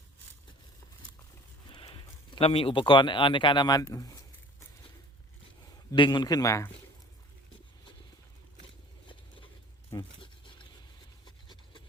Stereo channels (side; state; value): both; normal; correlation 0.48